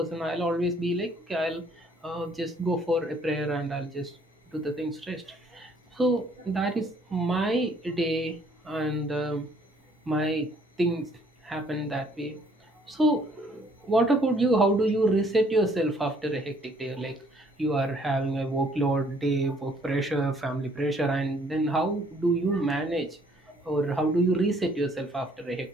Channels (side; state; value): both; normal; correlation 0.62